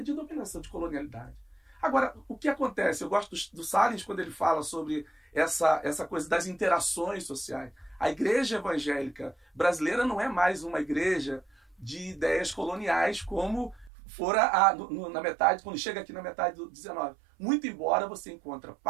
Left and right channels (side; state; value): left; drops out; at 13.9 s